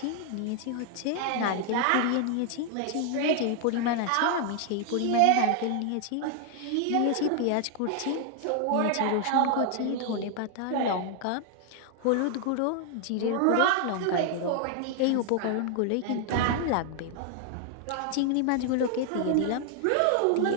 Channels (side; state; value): both; different; correlation 0.00